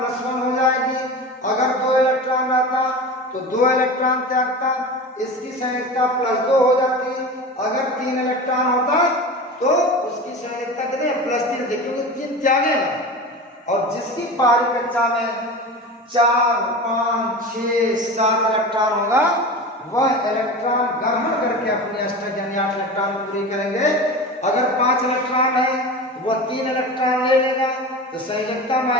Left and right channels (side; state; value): both; normal; correlation 0.30